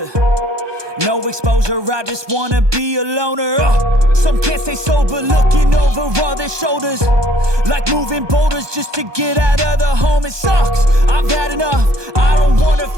No exposure, I just wanna be a loner. Some can't stay sober, looking over all their shoulders, like moving boulders just to get out of the home. It sucks, I've had enough, I don't wanna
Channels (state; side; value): late; left; 1.2 ms